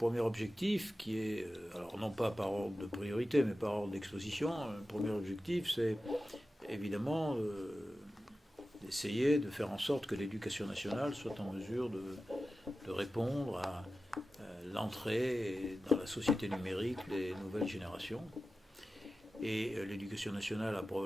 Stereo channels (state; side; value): normal; both; correlation 0.94